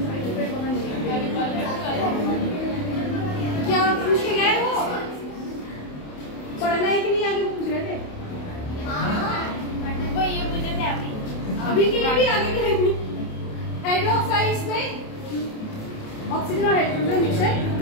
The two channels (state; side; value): late; right; 28 ms